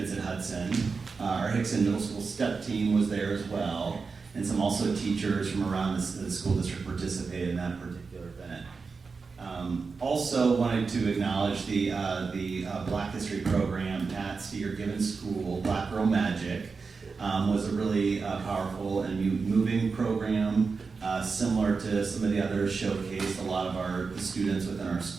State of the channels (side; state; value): left; quieter; 4.7 dB